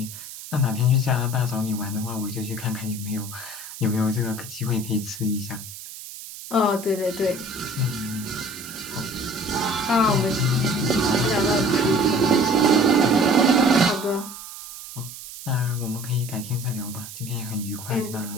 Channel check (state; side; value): noise; right; hiss, 13 dB below the sound